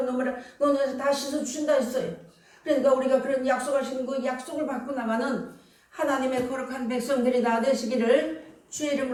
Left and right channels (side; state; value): both; identical; correlation 1.00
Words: 눈물을 너네에서 다 씻어주신다 했어요. 그러니까 우리가 그런 약속하신 그 약속을 받고 나가는 하나님의 거룩한 백성들이 다 되시기를 주의